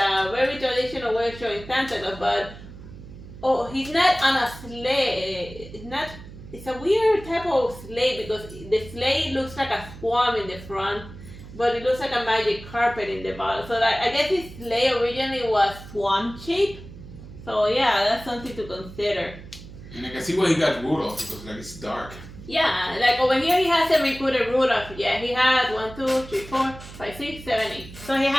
very traditional way of showing Santa Claus. But he's not on a sleigh. It's a weird type of sleigh because the sleigh looks like a swan in the front, but it looks like a magic carpet in the bottom. So I guess his sleigh originally was swan shaped. So yeah, that's something to consider. And I can see why he got Rudolph because like it's dark. Yeah, like over here he hasn't recruited Rudolph. Yeah, he has 1, 2, 3, 4, 5, 6, 7, 8. So he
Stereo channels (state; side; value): noise; right; hum, 16 dB below the sound